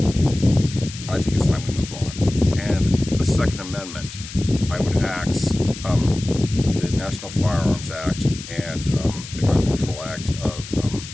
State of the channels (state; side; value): noise; left; hiss, 13 dB below the sound